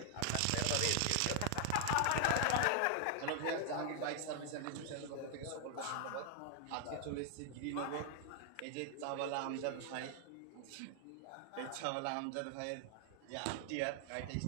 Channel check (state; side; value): different; both; correlation 0.00